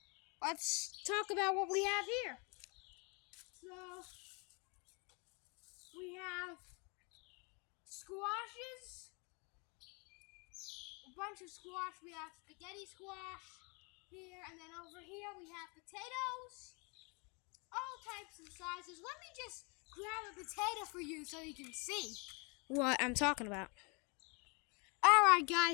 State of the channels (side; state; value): right; quieter; 31.7 dB